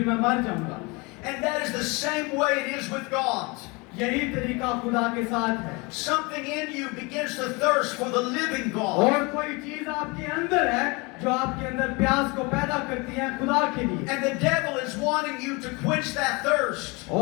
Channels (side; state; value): right; quieter; 27.0 dB